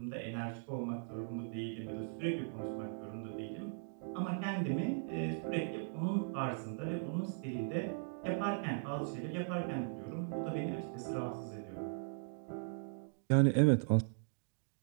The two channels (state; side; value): silent; left; digital silence